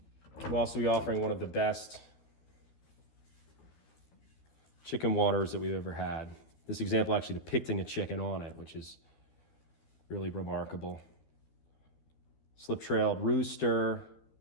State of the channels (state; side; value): late; right; 13 ms